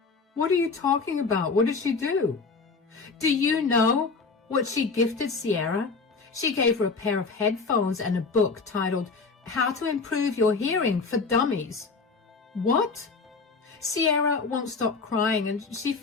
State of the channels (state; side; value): quieter; right; 4.4 dB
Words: What are you talking about? What did she do? Do you know what she gifted Sierra? She gave her a pair of headphones and a book titled How to Improve Your Hearing for Dummies. What? Sierra won't stop crying, and she